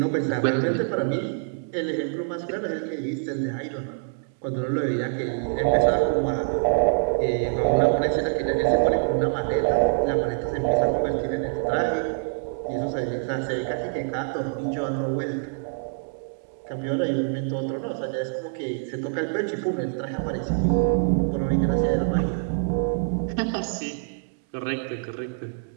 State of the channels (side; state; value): left; silent; 61 dB below the other